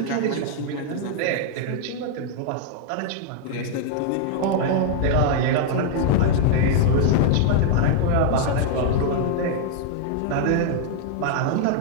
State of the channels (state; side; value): different; both; correlation -0.01